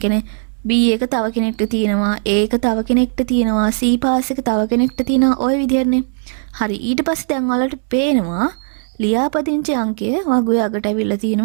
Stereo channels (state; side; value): silent; left; 68 dB below the other